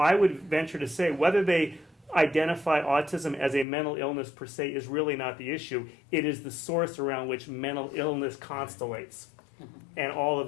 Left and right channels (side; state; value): right; drops out; at 3.7 s